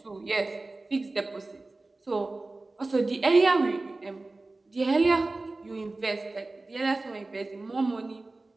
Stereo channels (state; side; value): quieter; left; 3.2 dB